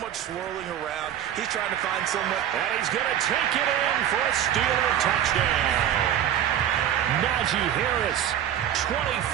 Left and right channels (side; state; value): left; quieter; 10.5 dB